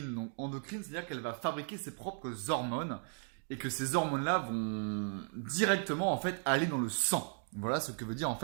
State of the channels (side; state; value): left; silent; 54 dB below the other